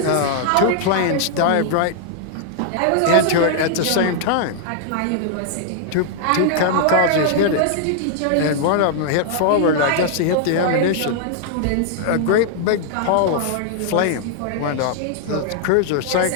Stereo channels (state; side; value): different; both; correlation -0.01